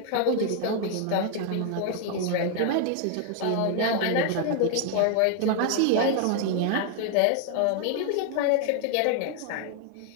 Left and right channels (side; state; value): both; different; correlation 0.00